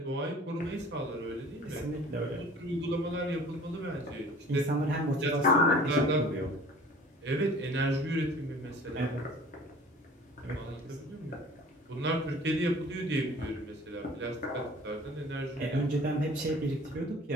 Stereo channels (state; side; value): normal; both; correlation 0.47